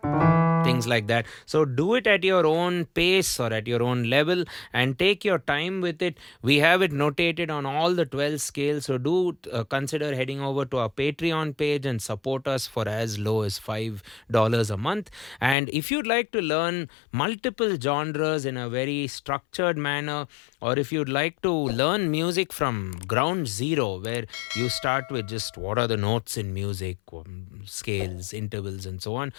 things like that. So do it at your own pace or at your own level and take your time with it. We have it notated on all the 12 scales, so do consider heading over to our Patreon page and support us for as low as $5 a month. And if you'd like to learn multiple genres in a very structured manner, or if you'd like to learn music from ground zero, where you start with just what are the notes in music, scales, intervals, and so on,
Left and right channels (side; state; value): right; drops out; at 15.6 s